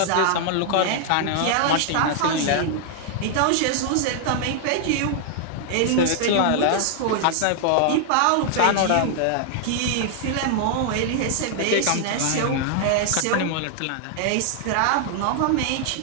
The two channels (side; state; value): both; different; correlation 0.00